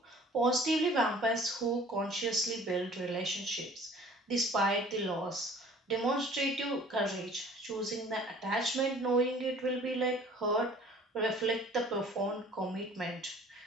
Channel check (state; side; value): normal; both; correlation 0.50